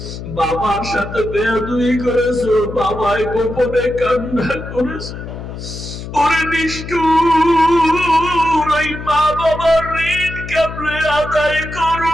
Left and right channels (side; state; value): left; noise; hum, 10 dB below the sound